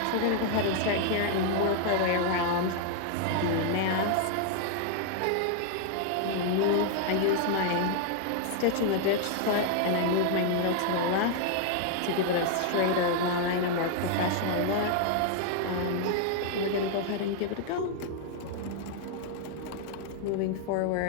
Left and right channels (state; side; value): different; both; correlation 0.00